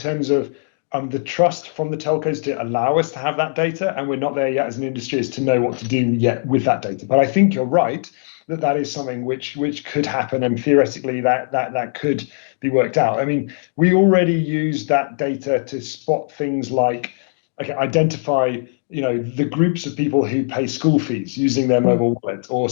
of the trust from the telcos to allow us to have that data, and we're not there yet as an industry as to know what to do yet with that data. But I think you're right that is something which could happen, and theoretically that could be worked out. I mean, we already use that data to spot things like, identify the groups of people who pay school fees using their mobile wallet, or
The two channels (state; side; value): silent; right; digital silence